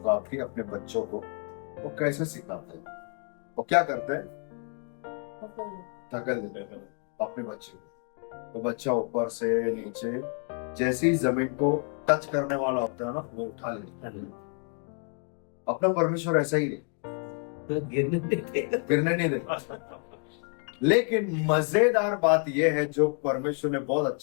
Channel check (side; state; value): right; quieter; 39.8 dB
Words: की अपने बच्चों को वो कैसे सिखाते हैं। वो क्या करते हैं? धकेल देते हैं अपने बच्चे को। तो बच्चा ऊपर से नीचे जैसे ही जमीन को टच करने वाला होता है ना, वो उठा लेता है। अपना परमेश्वर ऐसा ही नहीं, गिरने नहीं देता। लेकिन मजेदार बात यह है जो परमेश्वर ने बहुत